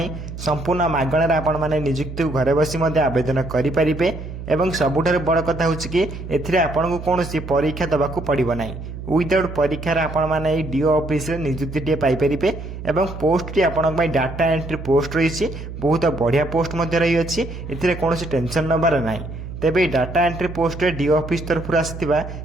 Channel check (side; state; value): right; noise; hum, 10 dB below the sound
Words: संपूर्ण मागणार आपण मैंने नियुक्ति घरे बसी आवेदन करेंगे। एवं सबुठार बड़ कथा हूँ कि एथिरे आपन को कौन परीक्षा दबाक पड़ो ना, विदाउट परीक्षार आपण मैंने डीओ ऑफिस नियुक्ति पाइपर। एवं पोस्ट टी आपण डाटा एंट्री पोस्ट रही बहुत बढ़िया पोस्ट रही है, कौन टेंशन नबार ना। तेबे data entry post DO office तरफ आसवा